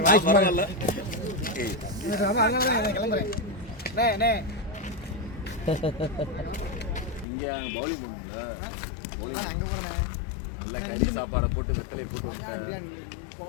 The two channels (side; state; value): right; drops out; at 7.2 s